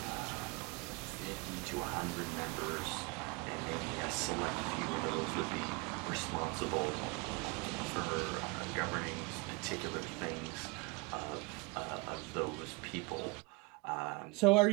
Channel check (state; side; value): quieter; left; 27.1 dB